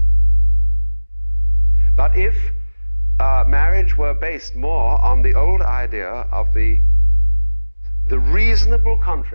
But if marriage were based more on the old idea of the reasonable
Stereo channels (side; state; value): both; inverted; correlation -1.00